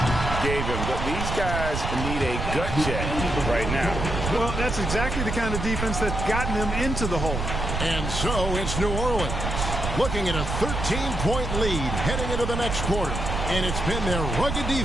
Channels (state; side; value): noise; right; rumble, 3 dB below the sound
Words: gave him. But these guys need a gut check right now. Well, that's exactly the kind of defense that's gotten them into the hole. And so it's New Orleans looking at a 13-point lead heading into the next quarter. And it's been their rugged